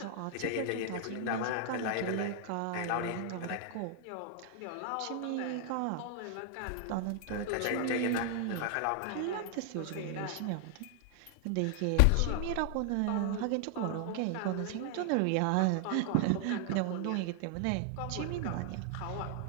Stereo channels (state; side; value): different; both; correlation 0.00